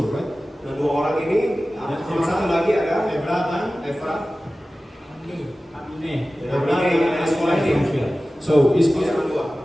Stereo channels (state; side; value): normal; both; correlation 0.96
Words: right? Dan 2 orang ini, sama satu lagi ada Ebra dan Evra. Amine. Ya, Ebra Amine, dan sekolah ini. from here. So, is Dia sama